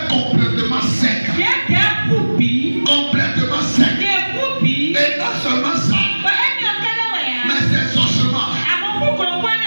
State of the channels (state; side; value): inverted; both; correlation -1.00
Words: complètement secs. Complètement secs. Et non seulement ça, mais ces ossements